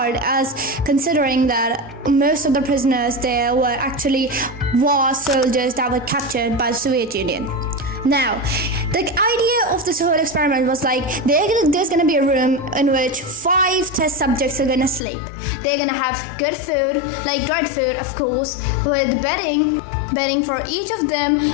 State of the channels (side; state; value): right; drops out; at 15.0 s